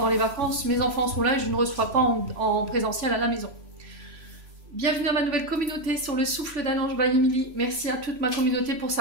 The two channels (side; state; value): left; late; 3.5 ms